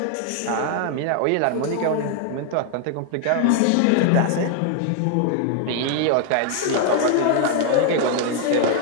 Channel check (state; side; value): different; both; correlation 0.00